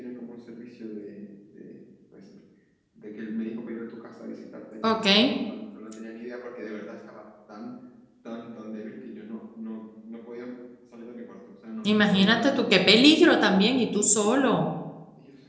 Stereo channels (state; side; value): identical; both; correlation 1.00